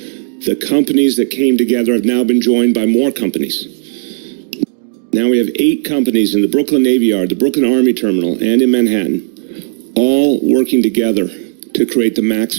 The companies that came together have now been joined by more companies. Now we have 8 companies in the Brooklyn Navy Yard, the Brooklyn Army Terminal, and in Manhattan, all working together to create the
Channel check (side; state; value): left; silent; digital silence